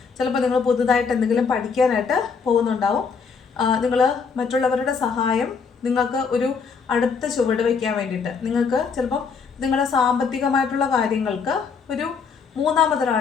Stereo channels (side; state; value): right; quieter; 5.6 dB